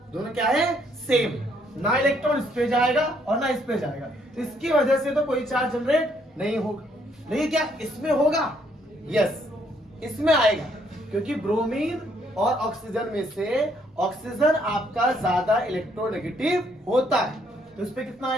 दोनों क्या है? सेम। ना इलेक्ट्रॉन इस पे जाएगा और ना इस पे जाएगा, तो इसकी वजह से तो कोई चार्ज जनरेट नहीं होगा। लेकिन क्या इसमें होगा? यस, इसमें आएगा, क्योंकि ब्रोमीन और ऑक्सीजन में से ऑक्सीजन आपका ज्यादा इलेक्ट्रोनेगेटिव होता है। तो इस पे कितना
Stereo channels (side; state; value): both; normal; correlation 0.69